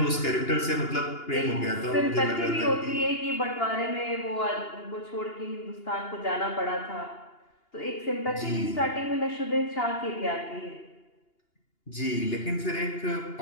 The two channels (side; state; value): right; late; 2.8 ms